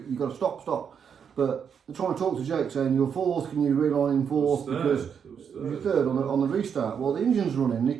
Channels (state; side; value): quieter; left; 7.3 dB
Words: got to stop, stop. But they're trying to talk to Jake saying, you're fourth, can you realign in fourth? Because you're third on the restart. Well, the engine's running, and he